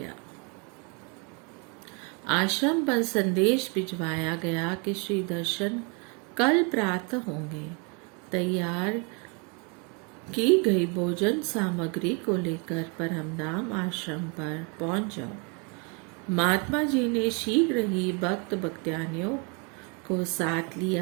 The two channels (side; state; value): left; quieter; 33.6 dB